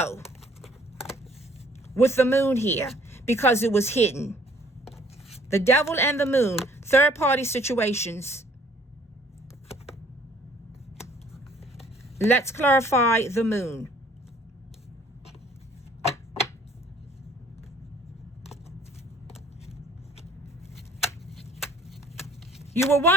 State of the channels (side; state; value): both; normal; correlation 0.58